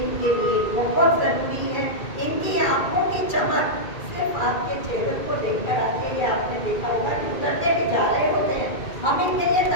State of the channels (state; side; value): late; right; 2.4 ms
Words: इनके लिए बहुत ज़रूरी है। इनकी आंखों की चमक सिर्फ आपके चेहरे को देखकर आती है। ये आपने देखा होगा कि उतरते भी जा रहे होते हैं, हम इनके लिए